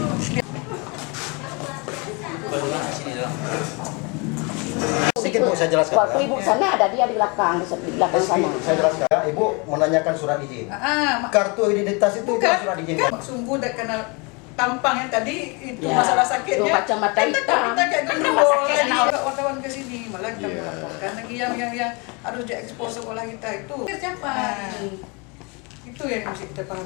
Sedikit Bu, saya jelaskan. Waktu Ibu sana ada dia di belakang sana. Saya jelaskan. Ibu menanyakan surat izin. Kartu identitas itu bukan surat izin. Sungguh udah kena tampang yang tadi itu masalah sakitnya. Itu kacamata hitam. Kita kayak gendul lagi. Wartawan ke sini malah kita melaporkan lagi yang harus diekspos sekolah kita itu. Siapa? Itu yang mesti kita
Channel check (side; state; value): right; quieter; 30.3 dB